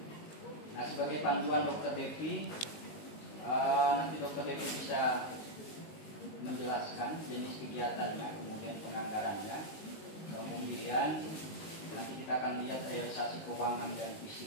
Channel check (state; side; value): late; right; 19 ms